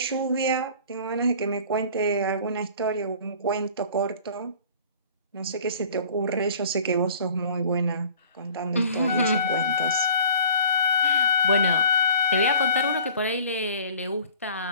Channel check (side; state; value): both; inverted; correlation -0.50